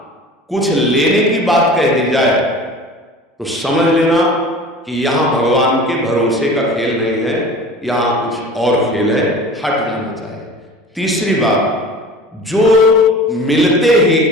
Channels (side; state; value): both; normal; correlation 0.40